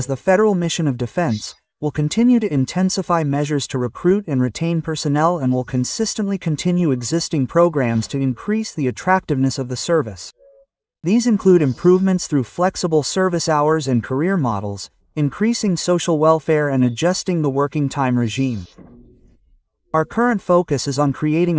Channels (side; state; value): both; identical; correlation 1.00